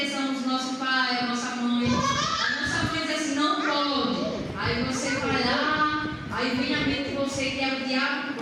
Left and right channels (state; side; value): identical; both; correlation 1.00